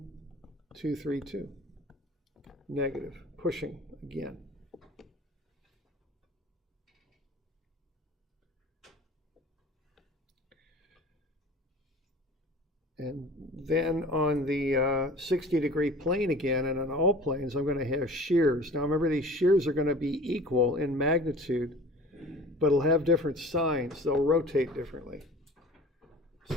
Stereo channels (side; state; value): both; normal; correlation 0.43